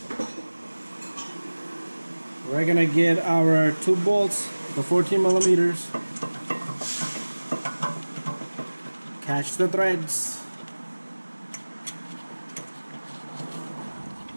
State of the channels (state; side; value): inverted; both; correlation -1.00